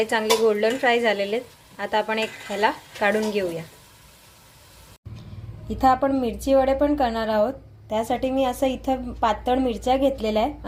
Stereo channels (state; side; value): identical; both; correlation 1.00